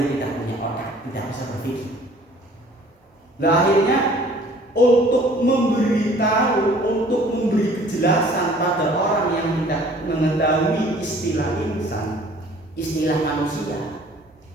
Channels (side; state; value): both; normal; correlation 0.53